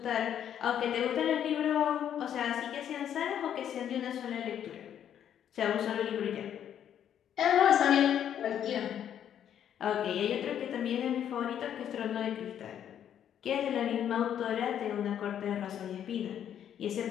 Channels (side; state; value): right; quieter; 9.7 dB